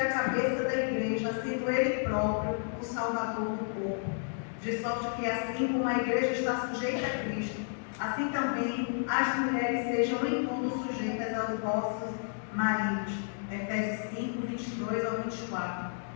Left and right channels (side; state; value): right; silent; digital silence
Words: a cabeça da igreja, sendo Ele próprio o Salvador do corpo. De sorte que assim como a igreja está sujeita a Cristo, assim também as mulheres sejam em tudo sujeitas aos vossos maridos. Efésios 5, 22 ao 24.